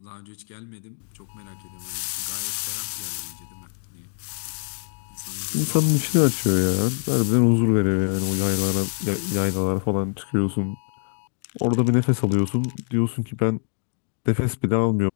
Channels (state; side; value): silent; right; 55 dB below the other